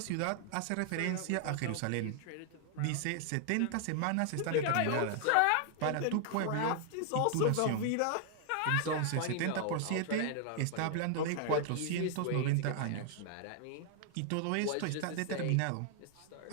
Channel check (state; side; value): different; both; correlation 0.00